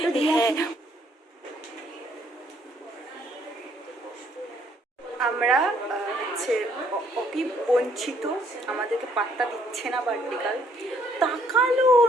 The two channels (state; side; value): normal; both; correlation 0.66